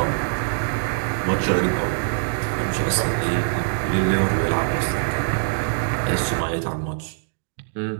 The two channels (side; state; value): left; silent; digital silence